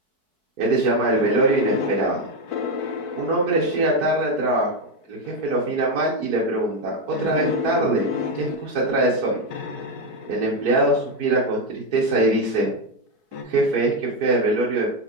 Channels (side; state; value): left; late; 4.6 ms